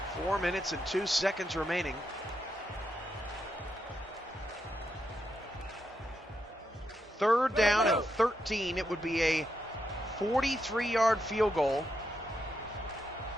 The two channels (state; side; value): normal; both; correlation 0.82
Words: Four minutes and 2 seconds remaining. Third down and 13. It would be a 43-yard field goal.